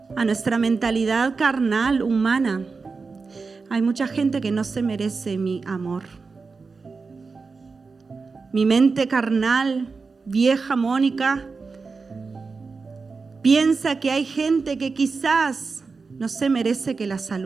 A nuestra mentalidad carnal, humana, hay mucha gente que no se merece mi amor. Mi mente carnal, vieja Mónica, piensa que hay gente que quizás no se merece que la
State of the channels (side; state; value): left; quieter; 4.5 dB